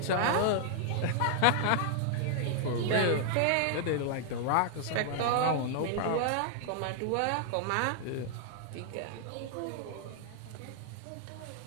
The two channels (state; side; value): different; both; correlation 0.00